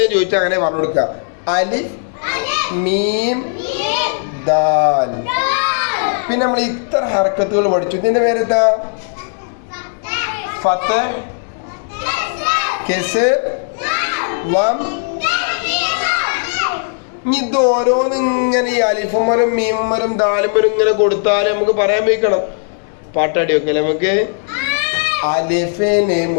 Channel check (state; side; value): silent; right; digital silence